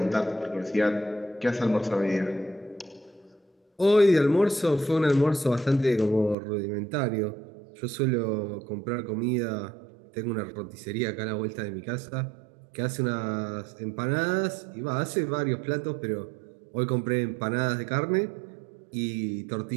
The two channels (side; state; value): left; drops out; at 6.4 s